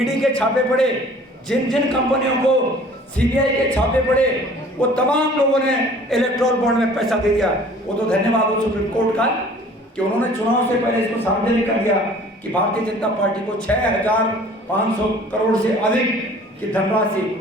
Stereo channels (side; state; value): both; normal; correlation 0.50